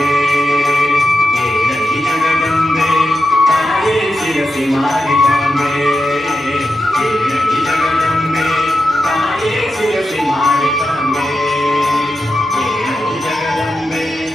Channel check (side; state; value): both; normal; correlation 0.88